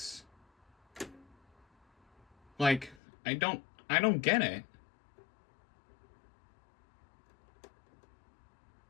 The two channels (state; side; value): drops out; right; at 3.0 s